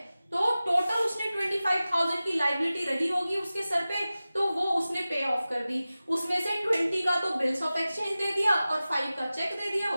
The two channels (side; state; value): both; inverted; correlation -0.96